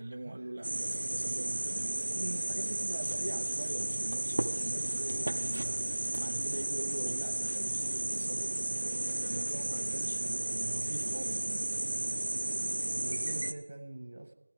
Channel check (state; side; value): inverted; both; correlation -1.00